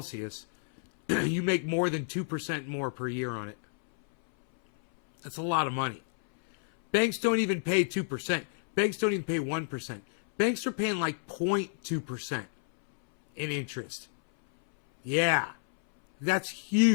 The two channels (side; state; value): right; silent; 58 dB below the other